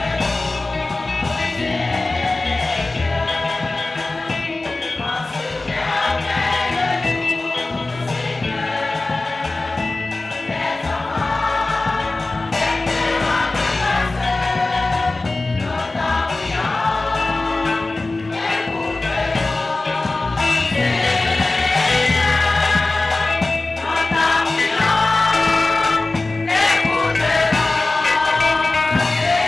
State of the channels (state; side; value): quieter; right; 3.2 dB